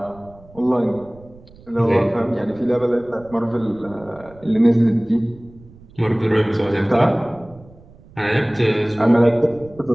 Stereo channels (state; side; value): noise; right; rumble, 23 dB below the sound